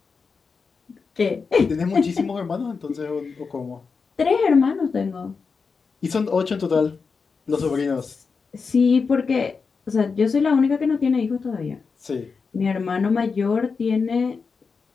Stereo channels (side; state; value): right; quieter; 5.1 dB